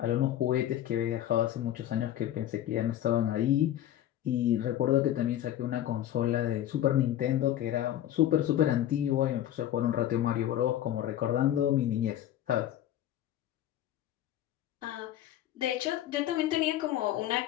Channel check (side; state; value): right; quieter; 12.2 dB